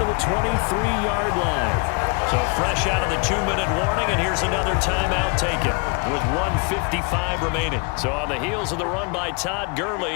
the 23-yard line. So fresh out of the 2-minute warning, and here's another timeout taken with 1:55 remaining. So on the heels of the run by Todd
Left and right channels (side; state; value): right; quieter; 32.4 dB